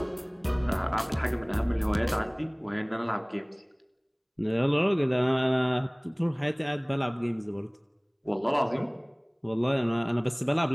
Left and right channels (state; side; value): identical; both; correlation 1.00